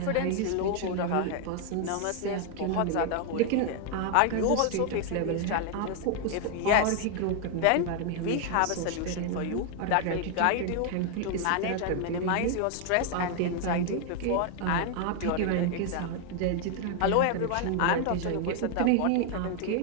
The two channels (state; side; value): different; both; correlation 0.00